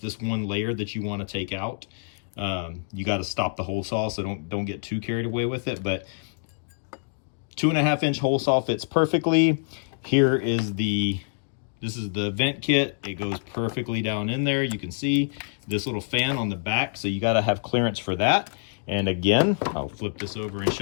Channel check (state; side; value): silent; right; digital silence